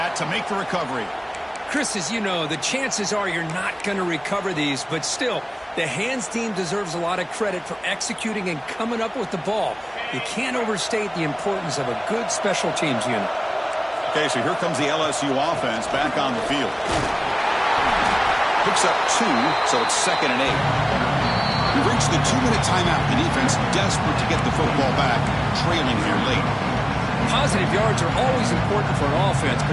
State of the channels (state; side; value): identical; both; correlation 1.00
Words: to make the recovery. Chris, as you know, the chances are you're not going to recover these, but still, the hands team deserves a lot of credit for executing and coming up with the ball. You can't overstate the importance of a good special teams unit. Okay, so here comes the LSU offense back on the field. Picks up 2, so it's second and 8. We've reached the 2-minute timeout. The defense desperate to get the football back, trailing here late. Positive yards are always important for an offense,